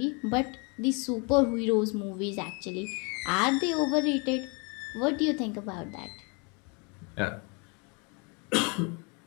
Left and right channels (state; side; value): quieter; right; 32.5 dB